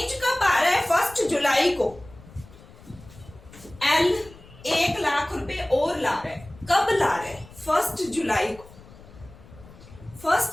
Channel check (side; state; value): left; noise; rumble, 21 dB below the sound